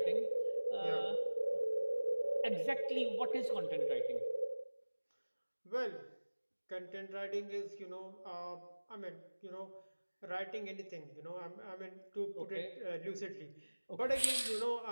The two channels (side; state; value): both; inverted; correlation -1.00